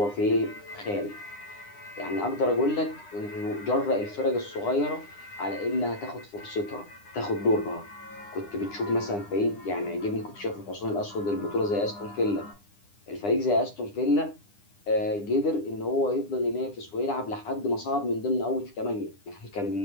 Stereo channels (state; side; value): late; right; 9.9 ms